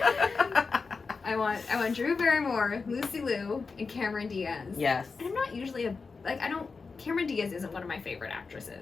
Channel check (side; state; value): right; quieter; 4.6 dB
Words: I want Drew Barrymore, Lucy Liu, and Cameron Diaz. Yes. And I'm not usually Cameron Diaz isn't one of my favorite